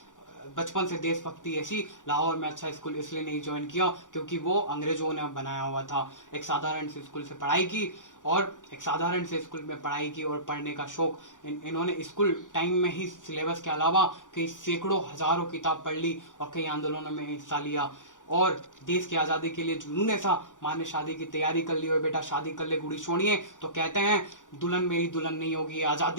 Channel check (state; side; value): late; right; 0.87 ms